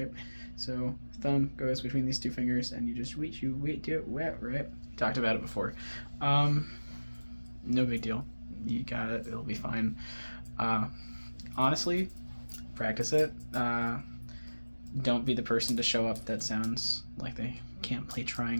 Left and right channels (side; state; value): both; inverted; correlation -1.00